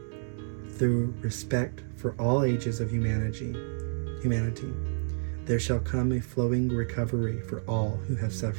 Through respect for all ages of humanity, there shall come a flowing recovery for all who have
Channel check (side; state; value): left; silent; digital silence